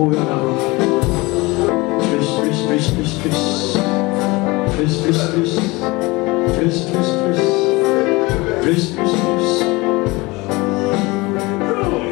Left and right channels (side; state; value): right; quieter; 23.3 dB